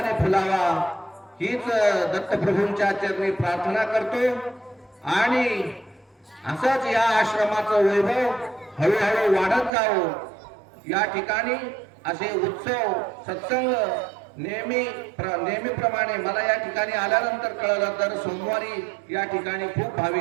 फुलावा हीच दत्तप्रभूंच्या चरणी प्रार्थना करतो. आणि असंच या आश्रमाचं वैभव हळूहळू वाढत जावं. या ठिकाणी असे उत्सव सत्संग नेहमीप्रमाणे मला या ठिकाणी आल्यानंतर कळलं तर सोमवारी या ठिकाणी खूप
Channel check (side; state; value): left; drops out; at 9.7 s